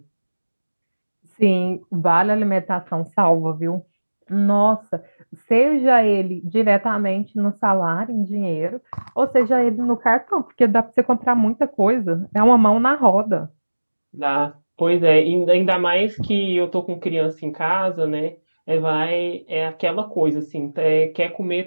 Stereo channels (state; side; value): inverted; both; correlation -1.00